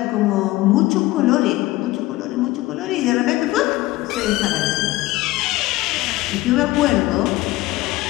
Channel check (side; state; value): right; quieter; 18.5 dB